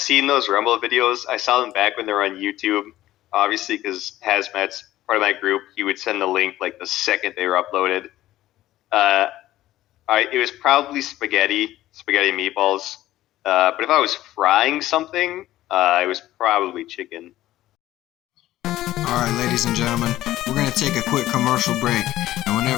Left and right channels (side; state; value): right; quieter; 14.8 dB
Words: those Rumble videos. I saw them back when they were on YouTube, obviously because Hazmat's part of my group. He would send the link like the second they were uploaded. Uh, it was probably spaghetti meatballs. But if I was frying something, it was probably chicken. All right, ladies and gentlemen, we're going to take a quick commercial break. And